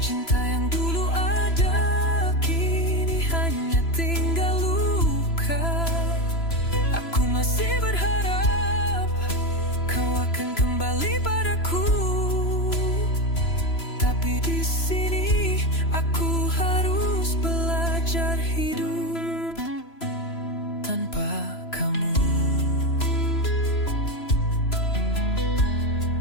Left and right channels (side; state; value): right; late; 3.0 ms